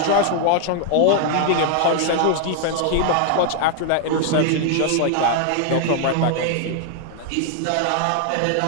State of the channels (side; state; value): both; different; correlation 0.00